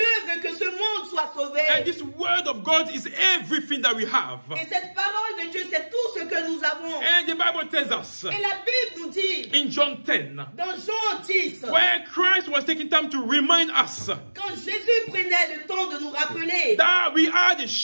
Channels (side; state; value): both; inverted; correlation -1.00